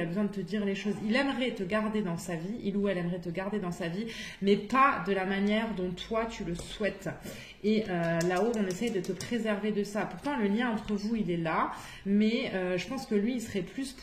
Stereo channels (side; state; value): both; identical; correlation 1.00